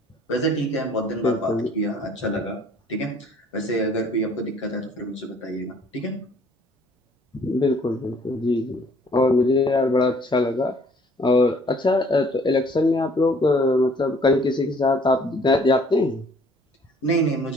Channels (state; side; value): normal; both; correlation 0.58